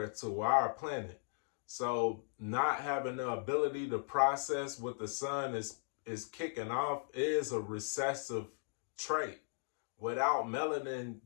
to our planet. So not having the ability to process what the sun is kicking off is a recessive trait. Without melanin,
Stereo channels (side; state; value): right; silent; digital silence